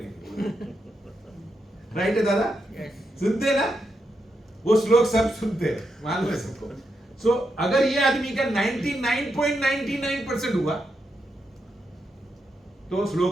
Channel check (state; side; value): normal; both; correlation 0.84